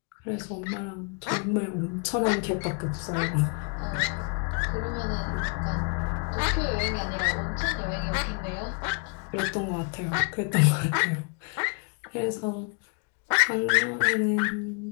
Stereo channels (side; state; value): right; quieter; 37.4 dB